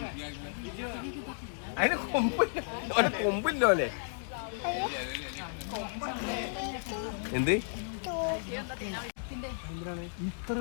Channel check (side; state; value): right; silent; digital silence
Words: അതിന് കൊമ്പില്ലോ അല്ലേ? എന്ത് ഇത്ര